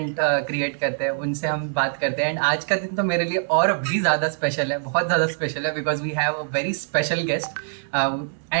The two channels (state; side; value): silent; left; digital silence